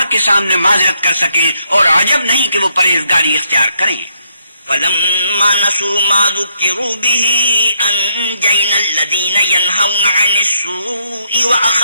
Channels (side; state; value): both; inverted; correlation -0.75